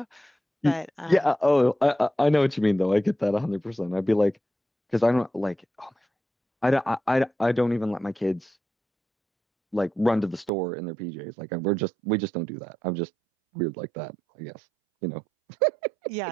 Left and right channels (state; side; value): drops out; left; at 10.5 s